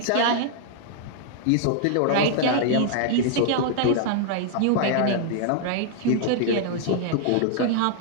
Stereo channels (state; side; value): different; both; correlation 0.00